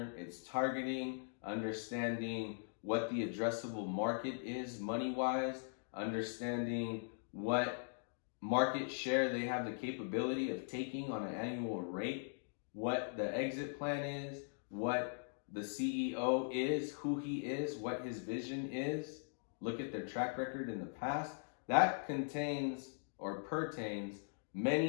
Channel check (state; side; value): silent; right; digital silence